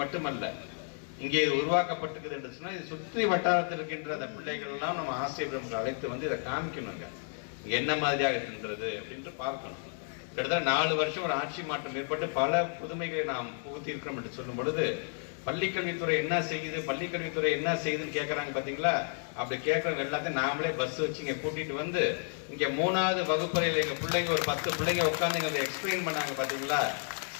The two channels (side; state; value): right; silent; 57 dB below the other